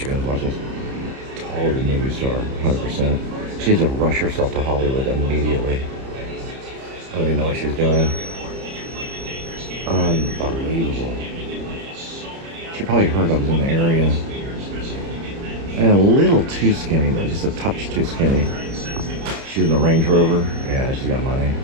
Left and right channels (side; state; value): left; late; 30 ms